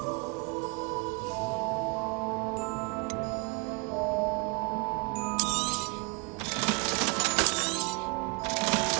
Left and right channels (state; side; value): quieter; left; 31.4 dB